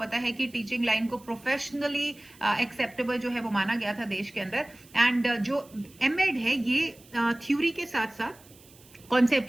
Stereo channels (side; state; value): right; noise; hiss, 25 dB below the sound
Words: है कि टीचिंग लाइन को प्रोफेशनली एक्सेप्टेबल जो है वो माना गया था देश के अंदर। एंड जो एमएड है ये थ्योरी के साथ साथ